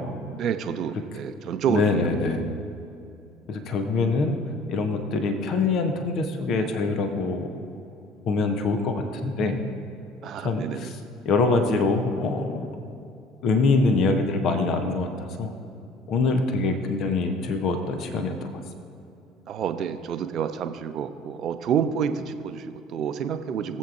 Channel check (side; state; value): both; normal; correlation 0.50